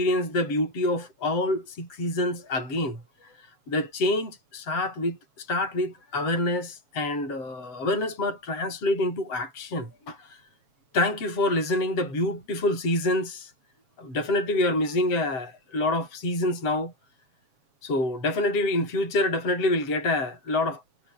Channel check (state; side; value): late; right; 7.2 ms